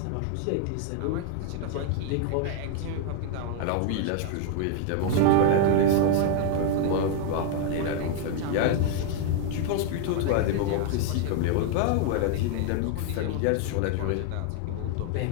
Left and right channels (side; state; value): both; different; correlation 0.00